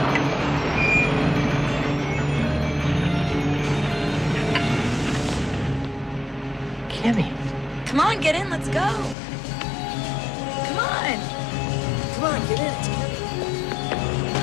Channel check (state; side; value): drops out; right; at 9.2 s